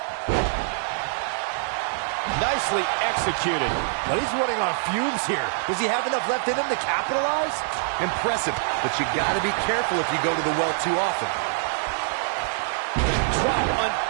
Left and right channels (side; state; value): left; silent; digital silence